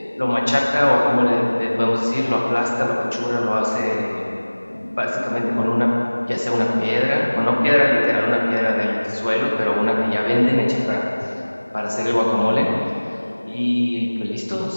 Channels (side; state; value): both; inverted; correlation -1.00